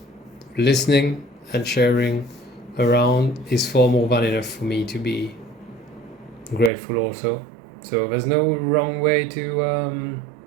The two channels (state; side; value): drops out; left; at 6.7 s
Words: listening and sharing around is far more than enough for me to be grateful also. So there's no wrong way to